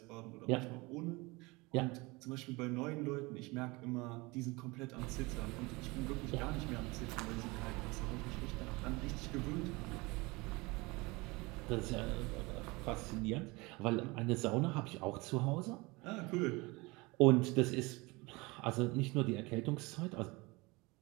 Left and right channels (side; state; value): left; quieter; 24.4 dB